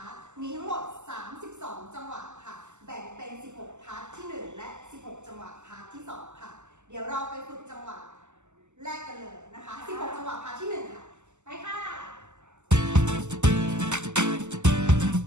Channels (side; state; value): left; late; 0.83 ms